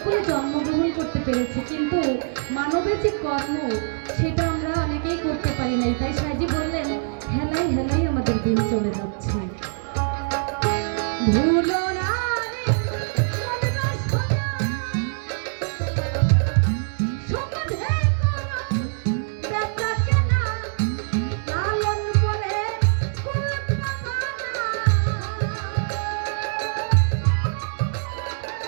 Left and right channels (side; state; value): left; silent; digital silence